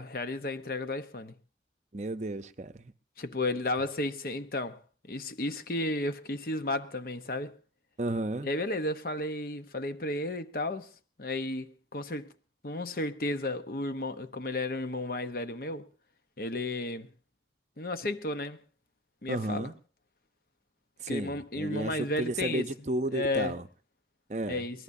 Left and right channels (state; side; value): normal; both; correlation 0.26